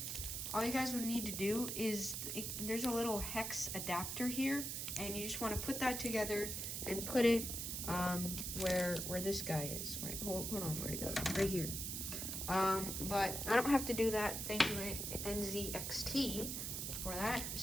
all you guys would need to do is, there's a little hex adapter here, and you just want to put that together and put it where this guy is. Right, hold on, where'd it go? Right here. But I don't have to do that. Thank you, NZXT, for that.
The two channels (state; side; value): noise; right; hiss, 3 dB below the sound